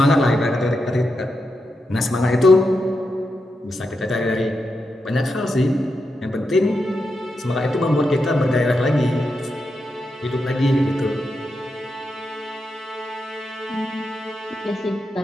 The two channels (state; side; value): normal; both; correlation 0.86